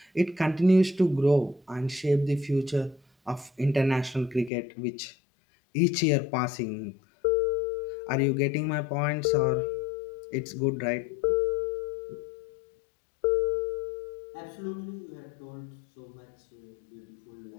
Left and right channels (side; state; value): right; drops out; at 4.5 s